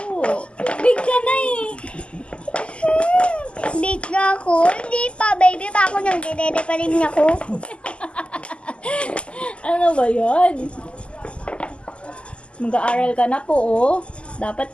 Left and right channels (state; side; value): late; right; 0.053 ms